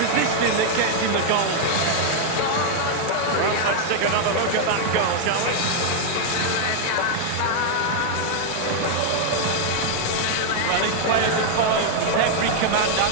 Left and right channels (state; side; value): different; both; correlation 0.00